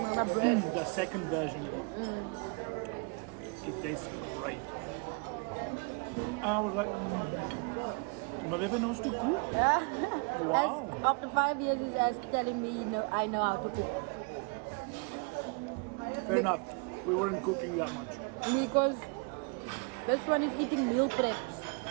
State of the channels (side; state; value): left; quieter; 35.6 dB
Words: bread. The second version of it. It tastes great. I was like, my baby knows to cook. Yeah. Wow. After 5 years, he's telling me, no, I know how to cook. Fair enough. We weren't cooking that much. Because this one is eating meal preps.